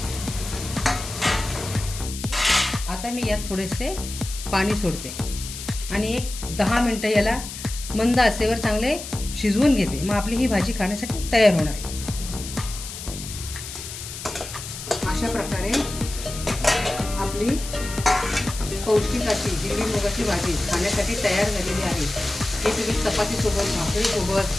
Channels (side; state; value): left; noise; hiss, 10 dB below the sound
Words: आता मी यात थोडेसे पाणी सोडते आणि एक 10 मिनिटं याला मंद आचेवर चांगले शिजवून घेते. मग आपली ही भाजी खाण्यासाठी तयार होणार आहे. अशा प्रकारे आपली पौष्टिक अशी हिरवी मुगाची भाजी खाण्यासाठी तयार झालेली आहे. हे तुम्ही चपातीसोबत, भाकरीसोबत,